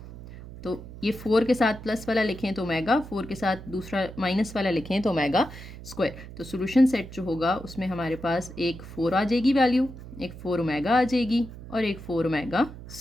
तो ये 4 के साथ प्लस वाला लिखें तो ओमेगा, 4 के साथ दूसरा माइनस वाला लिखें तो ओमेगा स्क्वायर। तो सोल्यूशन सेट जो होगा उसमें हमारे पास एक 4 आ जाएगी वैल्यू, एक 4 ओमेगा आ जाएगी और एक 4 ओमेगा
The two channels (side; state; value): right; noise; hum, 14 dB below the sound